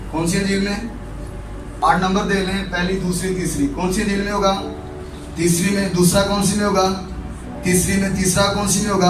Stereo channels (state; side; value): identical; both; correlation 1.00